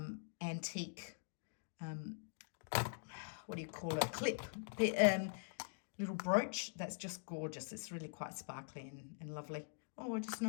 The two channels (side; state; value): right; silent; digital silence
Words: antique, what do you call it? Clip, little brooch. That's just gorgeous. It's really quite sparkly and lovely. Oh, I just